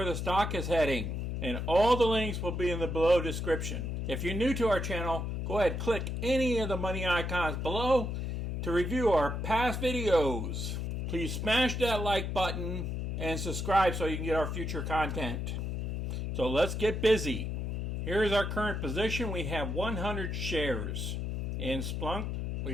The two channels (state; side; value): noise; left; hum, 2 dB below the sound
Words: the stock is heading. And all the links will be in the below description. If you're new to our channel, go ahead, click any of the money icons below to review our past videos. Please smash that like button and subscribe so you can get our future content. So let's get busy. Here is our current position. We have 100 shares in Splunk.